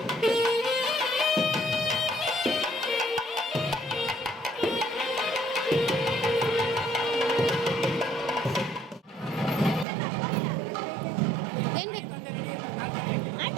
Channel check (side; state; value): left; drops out; at 9.9 s